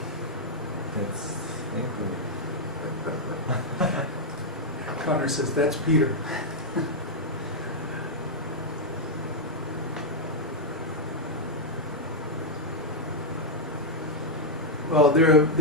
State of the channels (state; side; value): normal; both; correlation -0.03